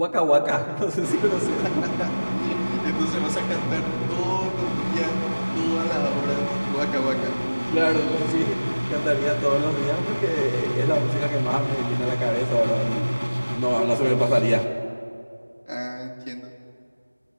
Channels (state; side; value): inverted; both; correlation -1.00